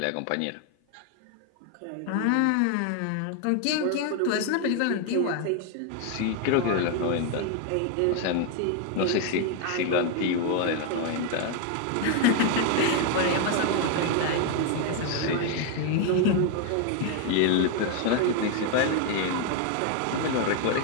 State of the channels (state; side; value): different; both; correlation 0.01